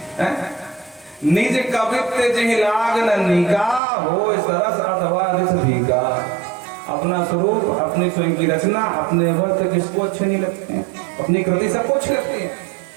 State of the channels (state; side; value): drops out; left; at 3.8 s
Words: निज कवित्व जिह लाग न निका हो सरस अथवा रिस भीगा। अपना स्वरूप, अपनी स्वयं की रचना, अपने वस्त्र किसको अच्छे नहीं लगते हैं? अपनी कृति सबको अच्छी लगती है,